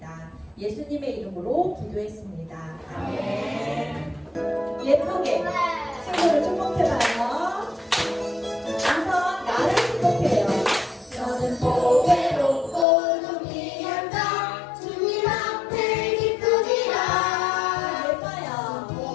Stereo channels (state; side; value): drops out; right; at 12.9 s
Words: 예수님의 이름으로 기도했습니다. 아멘. 예쁘게 친구를 축복해봐요. 우선 나를 축복해요. 너는 보배롭고 존귀한 자 주님 앞에 기쁘리라. 예뻐요.